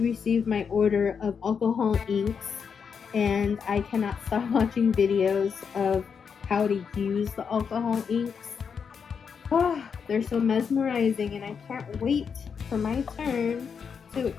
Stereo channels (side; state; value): right; quieter; 6.4 dB